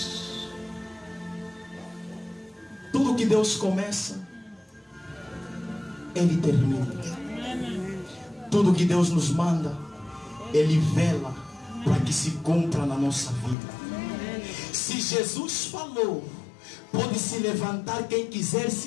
Tudo que Deus começa, Ele termina. Tudo que Deus nos manda, Ele vela para que se cumpra na nossa vida. Se Jesus falou, pode se levantar quem quiser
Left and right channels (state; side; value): drops out; right; at 13.6 s